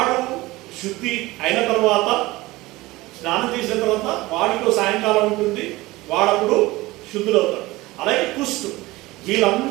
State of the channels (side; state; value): left; quieter; 19.8 dB